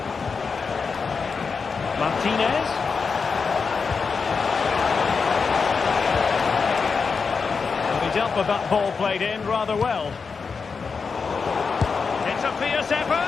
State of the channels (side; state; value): right; quieter; 5.2 dB